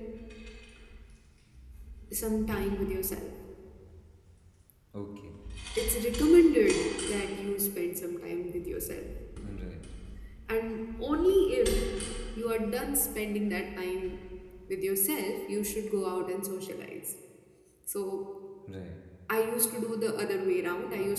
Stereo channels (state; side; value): identical; both; correlation 1.00